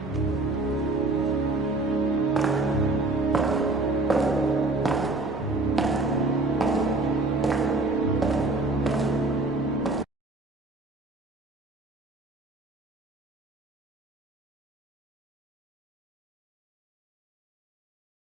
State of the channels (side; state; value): left; quieter; 3.1 dB